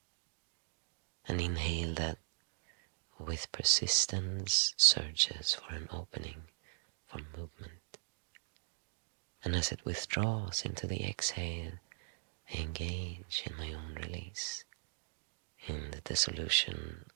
And inhale that with persistence searches for an opening, for movement. And as it withdraws into the exhale, I engage in my own release, in the dissolution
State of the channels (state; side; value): silent; left; digital silence